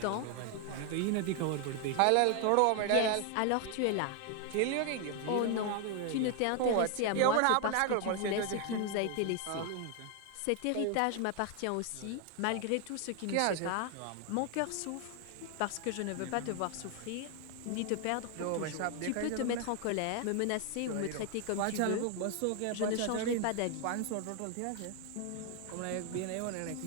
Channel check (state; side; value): different; both; correlation 0.01